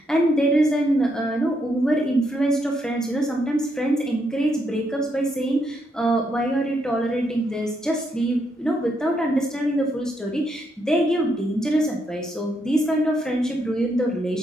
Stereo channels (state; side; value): normal; both; correlation 0.77